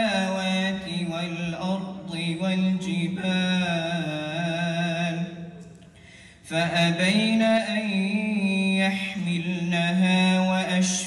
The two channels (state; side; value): identical; both; correlation 1.00